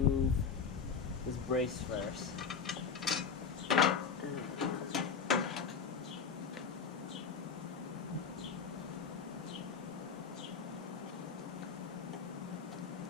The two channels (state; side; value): quieter; right; 6.1 dB